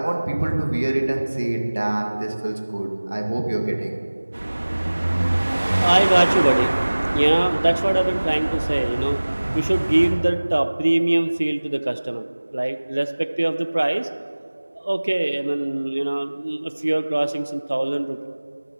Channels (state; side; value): inverted; both; correlation -1.00